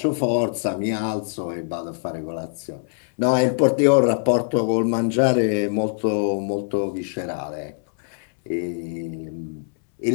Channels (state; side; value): silent; right; 63 dB below the other